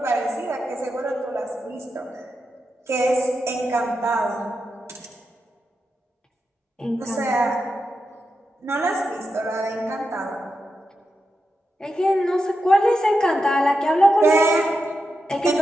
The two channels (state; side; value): normal; both; correlation 0.88